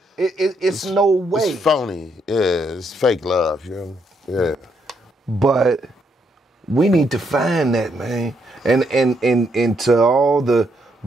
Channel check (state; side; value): normal; both; correlation 0.75